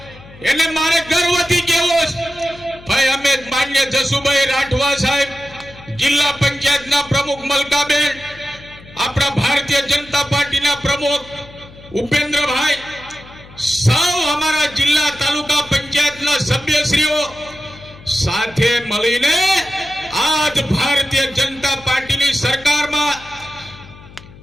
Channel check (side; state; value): left; noise; hum, 21 dB below the sound